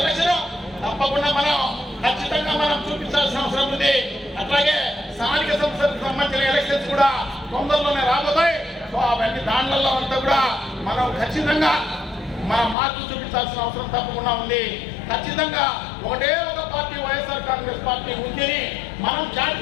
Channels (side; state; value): right; drops out; at 12.8 s